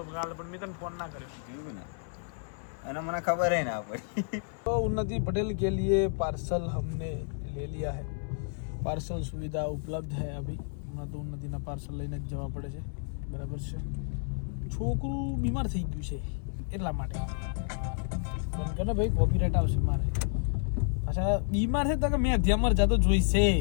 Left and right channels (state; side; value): silent; right; 57 dB below the other